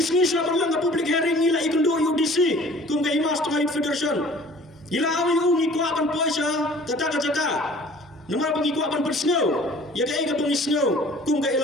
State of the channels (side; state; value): both; normal; correlation 0.50